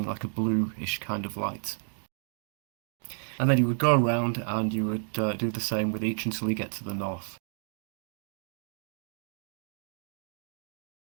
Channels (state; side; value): silent; left; digital silence